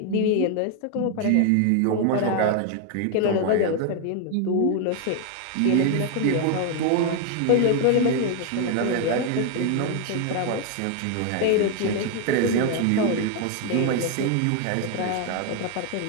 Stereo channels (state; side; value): different; both; correlation 0.01